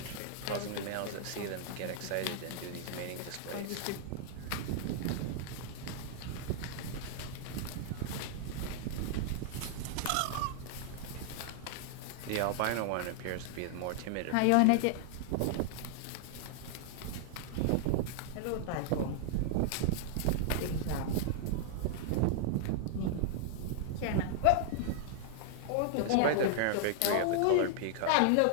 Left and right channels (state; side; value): different; both; correlation -0.01